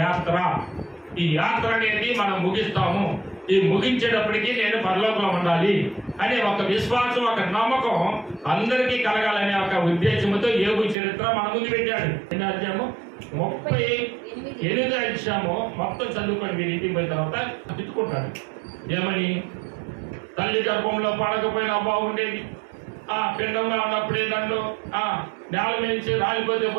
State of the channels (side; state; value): left; drops out; at 11.0 s